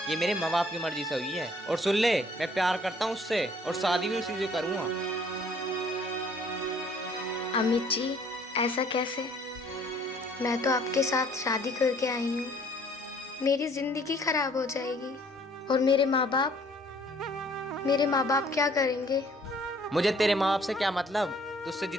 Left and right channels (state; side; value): normal; both; correlation 0.58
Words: ये मेरे माँ बाप की मर्जी से हुई है। और सुन ले, मैं प्यार करता हूँ उससे और शादी भी उसी से करूँगा। अमित जी, ऐसा कैसे? मैं तो आपके साथ शादी करके आई हूँ। मेरी जिंदगी खराब हो जाएगी और मेरे माँ बाप क्या करेंगे? मुझे तेरे माँ बाप से क्या मतलब? तुझसे